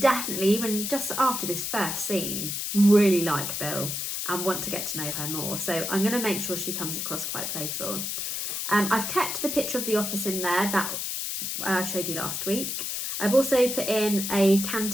even just after this first scene, really like Bill and want to get to know her more. So I'm going to make sure she comes across quite playful. I've kept the picture of the office in there that I showed you last week. I've also put in a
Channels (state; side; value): noise; left; hiss, 3 dB below the sound